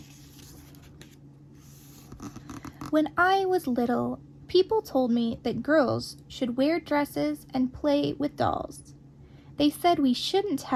When I was little, people told me that girls should wear dresses and play with dolls. They said we shouldn't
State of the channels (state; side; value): identical; both; correlation 1.00